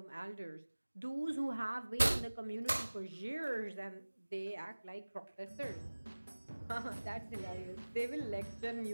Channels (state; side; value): inverted; both; correlation -1.00